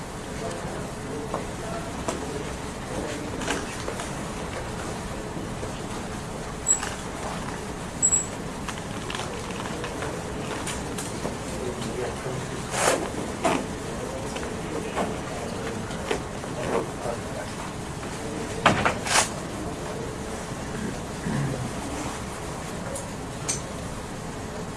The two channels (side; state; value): both; identical; correlation 1.00